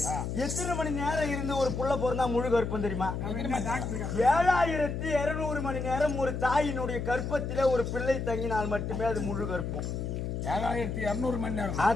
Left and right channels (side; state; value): left; noise; hum, 3 dB below the sound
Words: எத்தனை மணி நேரம் இருந்து ஒரு புள்ள பிறந்தா முழு கர்ப்பம் தெரியுமா? 7200 மணி நேரம் ஒரு தாயினுடைய கர்ப்பத்திலே ஒரு பிள்ளை தங்கினால் மட்டுமே அது முழு கர்ப்பம். 7200 மணி நேரம்.